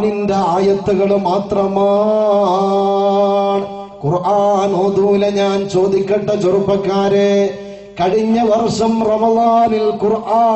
ആയത്തുകൾ മാത്രമാണ്. ഖുർആൻ ഓതൂല. ഞാൻ ചോദിക്കട്ടെ ചെറുപ്പക്കാരെ, കഴിഞ്ഞ വർഷം റമളാനിൽ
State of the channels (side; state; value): both; identical; correlation 1.00